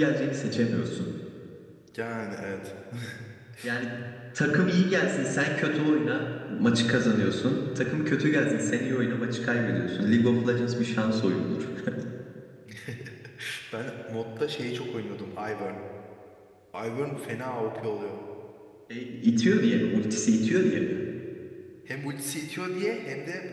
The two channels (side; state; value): both; identical; correlation 1.00